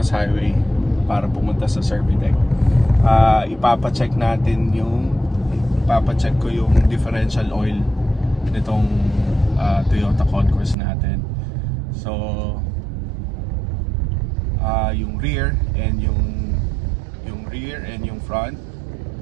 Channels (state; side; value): drops out; left; at 10.8 s